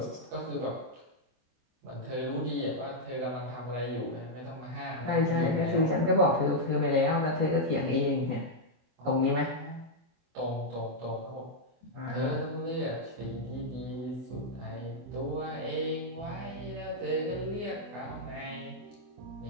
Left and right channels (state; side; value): late; left; 24 ms